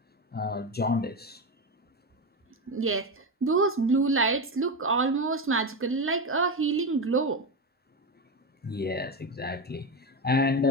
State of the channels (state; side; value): normal; both; correlation 0.15